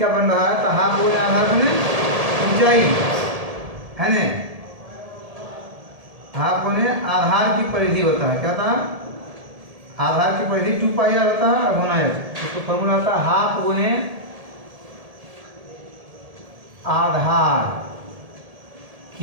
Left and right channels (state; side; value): late; left; 1.7 ms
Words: बन रहा है। तो हाफ गुने आधार गुने ऊंचाई है ना, हाफ गुने आधार की परिधि होता है। क्या होता है? आधार की परिधि 2 पाई आर होता है। गुना एच, इसको फॉर्मूला होता है हाफ गुने आधार